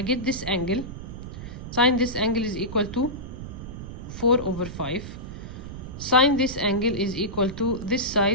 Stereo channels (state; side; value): noise; right; rumble, 10 dB below the sound